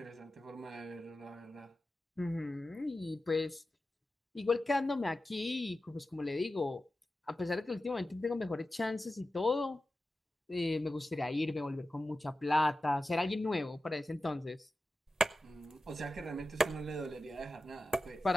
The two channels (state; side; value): normal; both; correlation 0.93